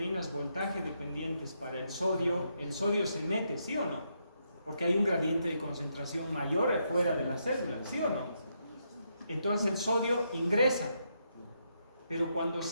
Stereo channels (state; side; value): inverted; both; correlation -0.79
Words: voltaje dependientes para el sodio se mete, ¿sí o no? Porque hay un gradiente de concentración mayor fuera de la célula, ¿sí o no? Entonces el sodio ingresa. Pero cuando